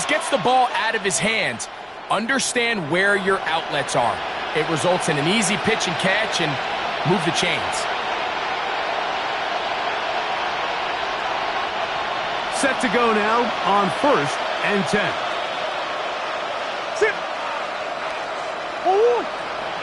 gets the ball out of his hands. Understand where your outlets are. It results in an easy pitch and catch and move the chains. Set to go now on first and 10. Sit.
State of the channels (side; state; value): both; identical; correlation 1.00